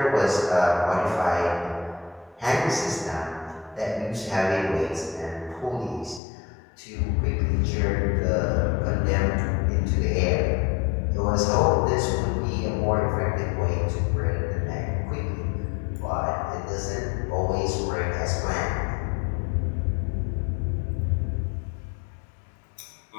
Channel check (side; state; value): right; drops out; at 6.2 s